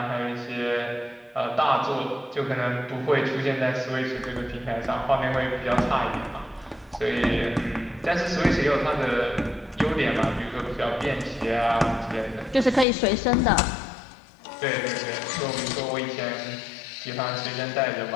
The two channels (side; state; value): right; drops out; at 12.9 s